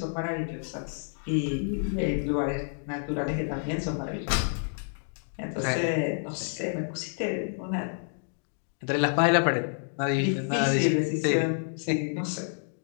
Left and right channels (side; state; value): right; silent; digital silence